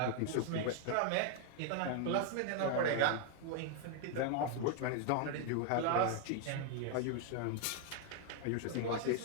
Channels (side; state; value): both; different; correlation 0.00